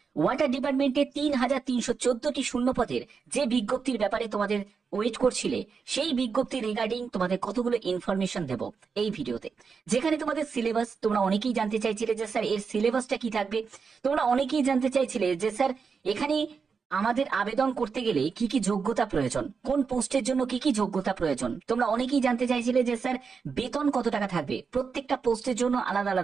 Water ডিপার্টমেন্টে ৩,৩১৪টি শূন্যপদের যে বিজ্ঞপ্তির ব্যাপারে তোমাদের ওয়েট করছিলে, সেই বিজ্ঞপ্তি রিগার্ডিং তোমাদের কতগুলো ইনফরমেশন দেব এই ভিডিওতে। যেখানে তোমাদের সিলেবাস, তোমরা অনেকেই জানতে চাইছিলে যে স্যার এর সিলেবাসটা কি থাকবে। তোমরা অনেকেই জানতে চাইছিলে যে স্যার এখানে আমাদের আবেদন করতে গেলে কি কি যোগ্যতা প্রয়োজন, কোন পোস্টের জন্য কি কি যোগ্যতা প্রয়োজন। তোমরা অনেকেই জানতে চাইছিলে যে স্যার বেতন কত টাকা থাকবে, প্রত্যেকটা পোস্টের জন্য আলাদা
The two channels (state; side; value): quieter; left; 5.5 dB